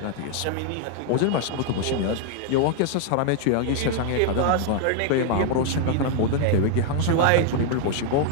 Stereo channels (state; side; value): different; both; correlation 0.00